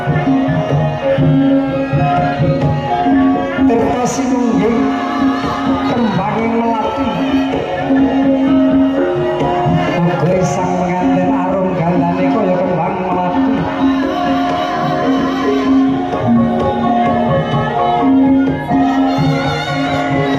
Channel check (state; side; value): identical; both; correlation 1.00